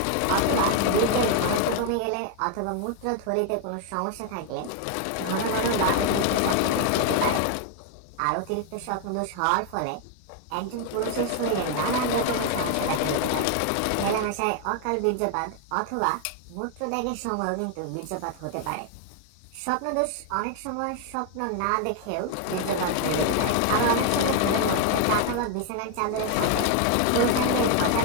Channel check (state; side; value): different; both; correlation 0.00